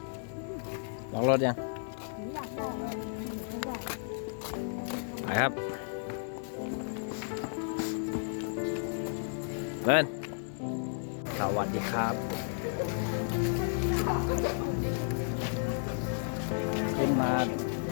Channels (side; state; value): right; silent; 56 dB below the other